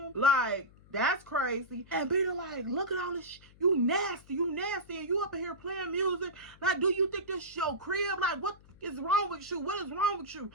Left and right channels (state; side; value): noise; left; hum, 25 dB below the sound